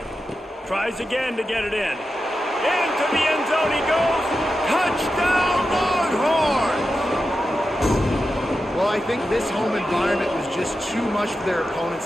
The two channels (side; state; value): both; normal; correlation 0.90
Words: Tries again to get it in. Into the end zone he goes. Touchdown Longhorns! Well, I think this home environment was just too much for their opponents